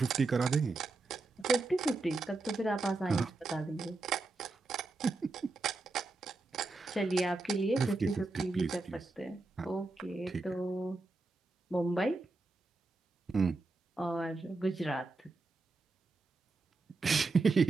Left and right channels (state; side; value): quieter; left; 3.4 dB